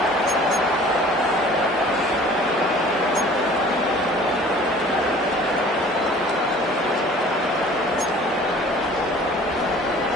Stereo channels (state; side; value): normal; both; correlation 0.49